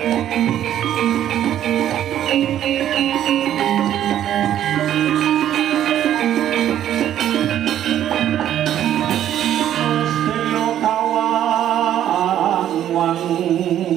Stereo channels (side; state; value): left; quieter; 11.2 dB